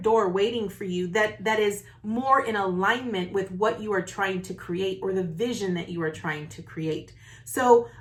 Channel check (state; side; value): identical; both; correlation 1.00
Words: waiting for you that is more in alignment with what you are trying to create, or the vision that you are trying to create. So